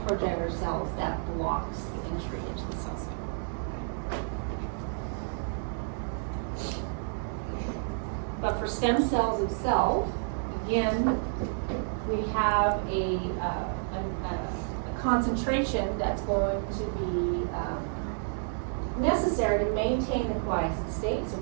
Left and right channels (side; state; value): left; silent; digital silence